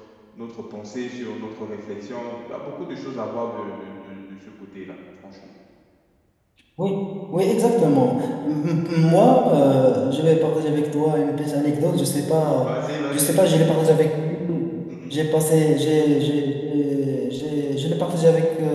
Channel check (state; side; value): identical; both; correlation 1.00